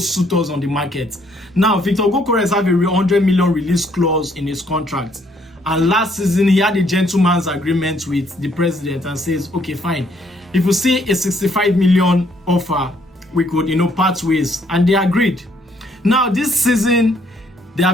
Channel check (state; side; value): normal; both; correlation 0.67